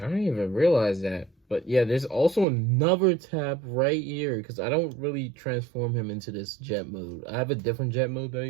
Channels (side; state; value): left; drops out; at 2.5 s